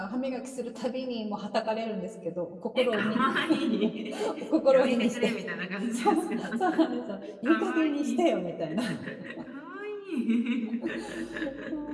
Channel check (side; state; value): both; identical; correlation 1.00